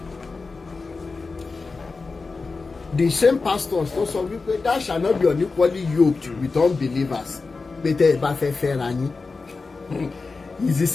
The same pastors tó sọ wípé that shall not be unequally yoked with unbelievers pé tẹ́ ẹ bá fẹ́ fẹ́ra yín. It's the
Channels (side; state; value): right; quieter; 4.1 dB